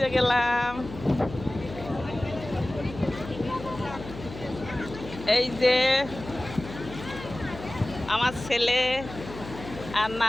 গেলাম। এই যে আমার ছেলে আর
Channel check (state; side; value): noise; left; hum, 13 dB below the sound